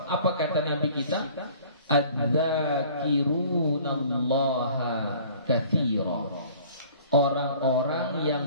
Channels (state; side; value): inverted; both; correlation -0.50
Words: apa kata Nabi kita? Adz-dzakirunallaha katsira. Orang-orang